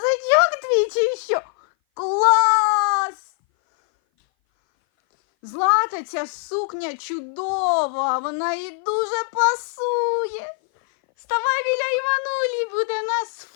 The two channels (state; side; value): silent; right; 59 dB below the other